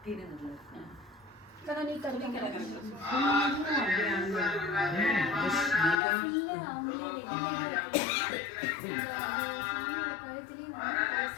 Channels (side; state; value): right; drops out; at 6.0 s